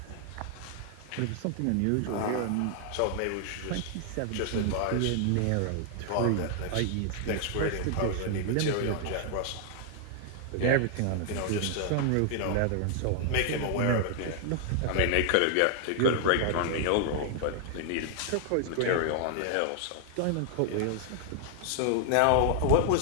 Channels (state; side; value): different; both; correlation 0.00